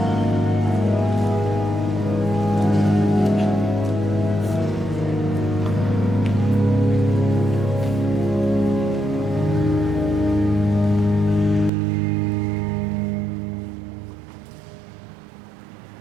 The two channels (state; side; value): drops out; left; at 11.7 s